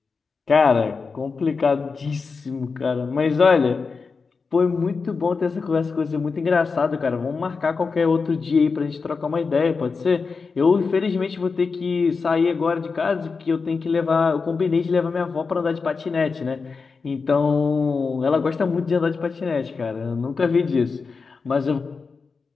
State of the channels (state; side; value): quieter; right; 4.8 dB